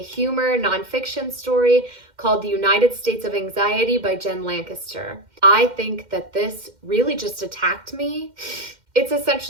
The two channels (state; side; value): late; left; 2.1 ms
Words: humor nonfiction story called The United States of Anxiety by Jen Lancaster. I think that this really just attacked me. It's